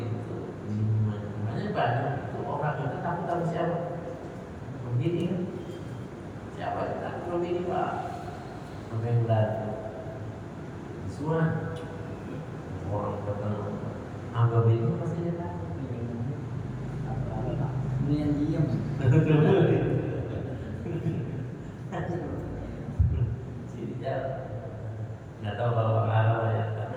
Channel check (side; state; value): both; identical; correlation 1.00